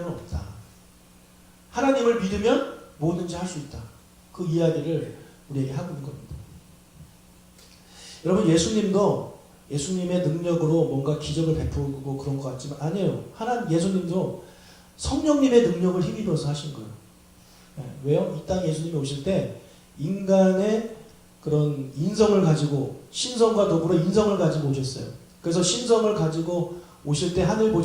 없다. 하나님을 믿으면 뭐든지 할 수 있다. 그 이야기를 우리에게 하고 있는 겁니다. 여러분 예수님도 예수님의 능력으로 뭔가 기적을 베푸고 그런 것 같지만 아니에요. 예수님도 성령님의 능력을 힘입어서 하신 거예요. 왜요? 이 땅에 예수님이 오실 때 인간의 그런 인성을 가지고 신성과 더불어 인성을 가지고 오셨어요. 그래서 신성을 가지고 오실 때 하늘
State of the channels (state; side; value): identical; both; correlation 1.00